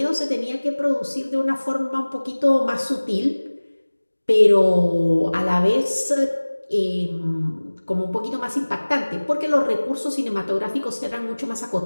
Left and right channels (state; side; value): inverted; both; correlation -1.00